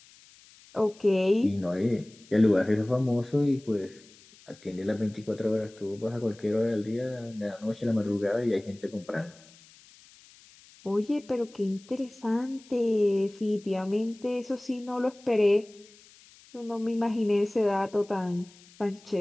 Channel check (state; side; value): noise; left; hiss, 25 dB below the sound